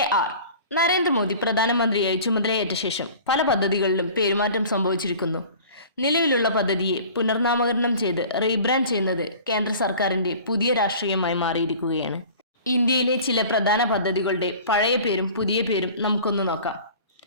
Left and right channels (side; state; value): both; inverted; correlation -0.43